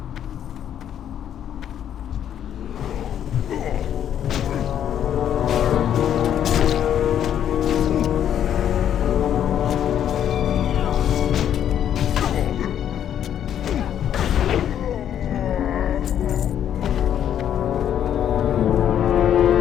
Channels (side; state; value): right; quieter; 9.9 dB